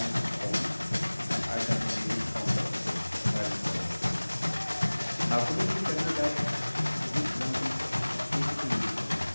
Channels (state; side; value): inverted; both; correlation -1.00